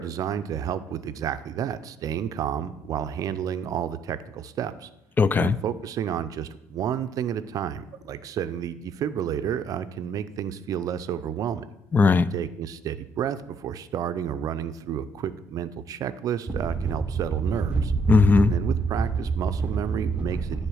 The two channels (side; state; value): both; normal; correlation 0.67